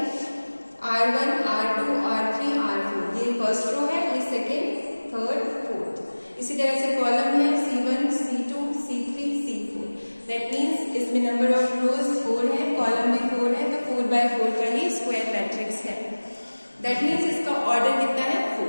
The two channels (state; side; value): inverted; both; correlation -1.00